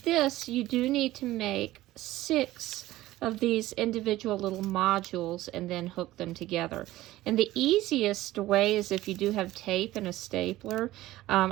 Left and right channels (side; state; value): left; quieter; 16.3 dB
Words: you do need to make 6 of these individual little modules and then hook them together. And the easiest way is if you do have tape and a stapler.